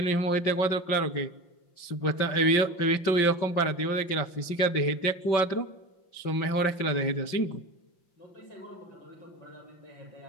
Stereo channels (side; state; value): right; late; 5.7 ms